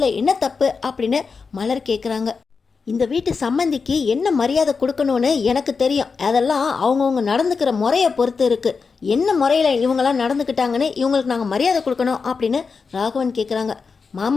என்ன தப்பு அப்படின்னு மலர் கேட்குறாங்க. இந்த வீட்டு சம்மந்திக்கு என்ன மரியாதை கொடுக்கணும்னு எனக்கு தெரியும், அதெல்லாம் அவங்கவுங்க நடந்துக்கிற முறையை பொறுத்து இருக்குது, என்ன முறையில் இவங்கெல்லாம் நடந்துக்கிட்டாங்கன்னு இவங்களுக்கு நாங்கள் மரியாதை கொடுக்கணும் அப்படின்னு ராகவன் கேட்குறாங்க.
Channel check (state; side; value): quieter; right; 5.0 dB